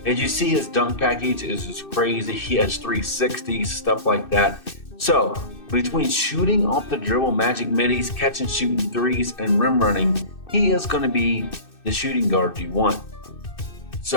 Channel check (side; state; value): right; late; 2.6 ms